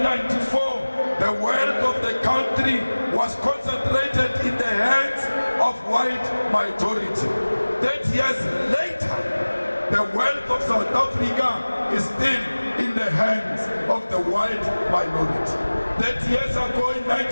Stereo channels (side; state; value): both; inverted; correlation -1.00